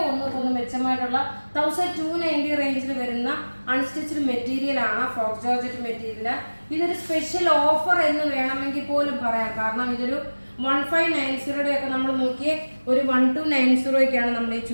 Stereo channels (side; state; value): both; inverted; correlation -1.00